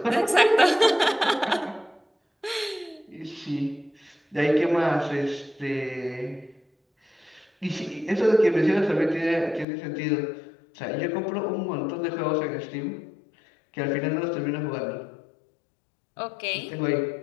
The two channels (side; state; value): right; drops out; at 9.7 s